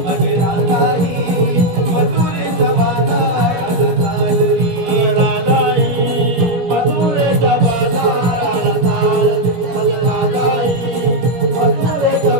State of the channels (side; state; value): left; late; 17 ms